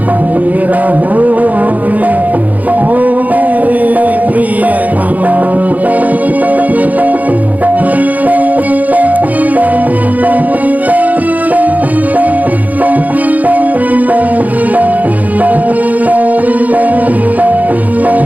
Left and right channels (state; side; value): late; left; 0.078 ms